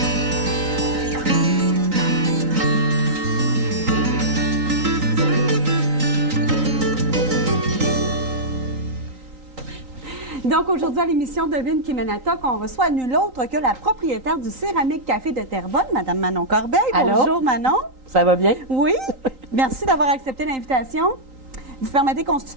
Donc, aujourd'hui, à l'émission Devine qui mène à toc, on reçoit nul autre que la propriétaire du Céramique Café de Terrebonne, Mme Manon Corbeil. Allô? Bonjour, Manon. Ça va bien? Oui. Merci d'avoir accepté l'invitation. Vous permettez qu'on se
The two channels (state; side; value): late; left; 3.9 ms